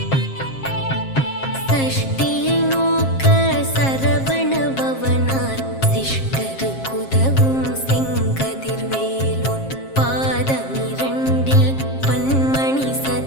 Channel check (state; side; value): late; right; 7.5 ms